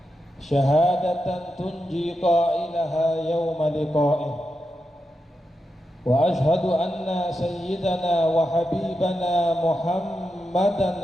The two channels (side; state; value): both; normal; correlation 0.88